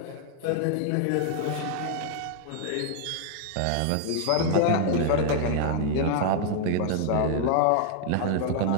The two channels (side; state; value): both; different; correlation 0.00